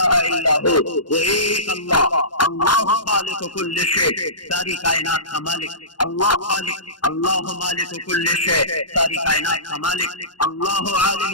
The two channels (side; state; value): right; late; 0.71 ms